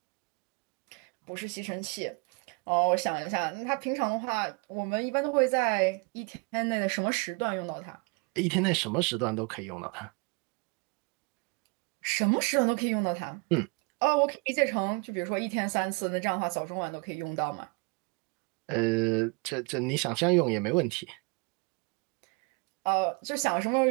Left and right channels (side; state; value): left; quieter; 32.1 dB